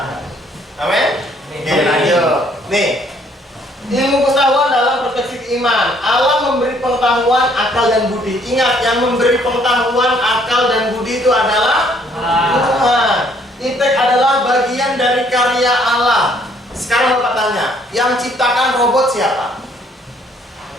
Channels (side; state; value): both; normal; correlation 0.64